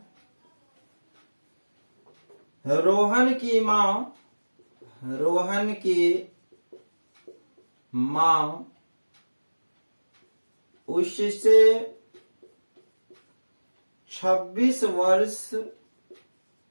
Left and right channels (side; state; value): both; inverted; correlation -1.00